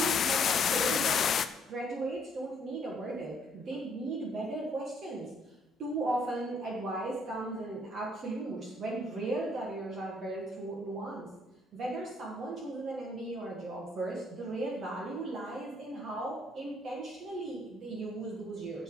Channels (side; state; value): both; normal; correlation 0.66